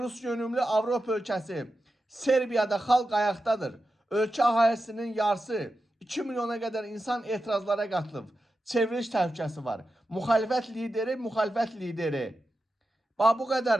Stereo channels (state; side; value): normal; both; correlation 0.91